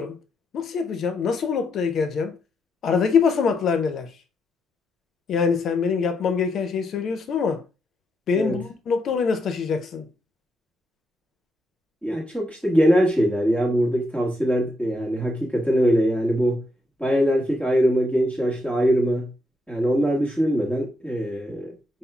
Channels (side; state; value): both; normal; correlation 0.80